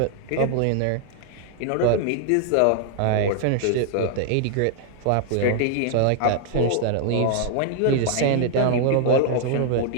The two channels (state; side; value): different; both; correlation 0.00